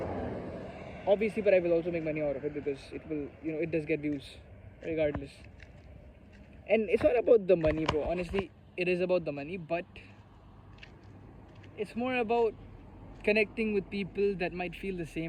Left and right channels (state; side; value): identical; both; correlation 1.00